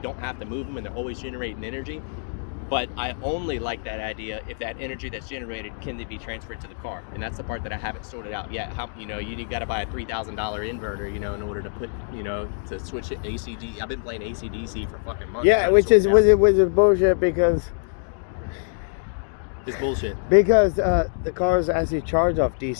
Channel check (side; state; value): right; silent; digital silence